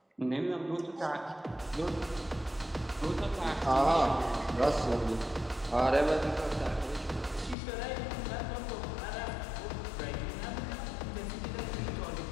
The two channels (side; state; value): right; drops out; at 7.6 s